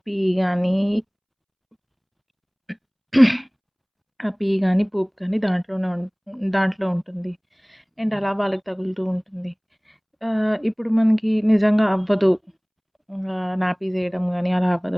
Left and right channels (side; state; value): both; identical; correlation 1.00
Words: గానీ, పూప్ గానీ దాంట్లో ఉంటుంది. అండ్ అలా వాళ్ళకి తగులుతూ ఉంటుంది. ఇప్పుడు మనకి నిజంగా అవ్వదు. నాపీస్ ఎయడం గానీ అలా